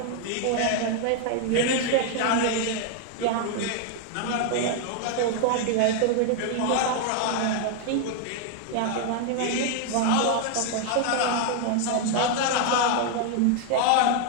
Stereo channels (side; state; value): both; different; correlation 0.00